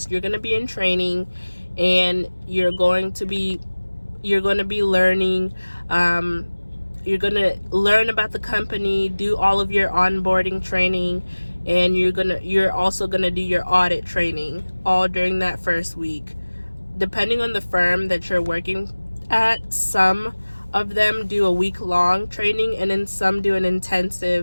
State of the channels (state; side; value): inverted; both; correlation -1.00